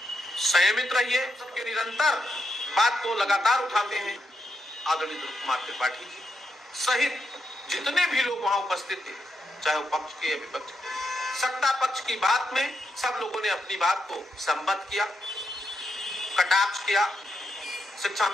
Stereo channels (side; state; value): both; normal; correlation 0.83